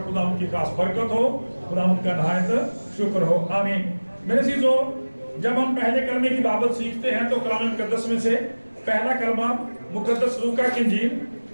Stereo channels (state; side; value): inverted; both; correlation -1.00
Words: خدا ان کی خاص برکت ہو. خدا ان کا نہایت شکر ہو. آمین. میرے عزیزو، جب ہم پہلے کلمے کی بابت سیکھتے ہیں تو کلام مقدس میں سے پہلا کلمہ مقدس لوکا کی انجیل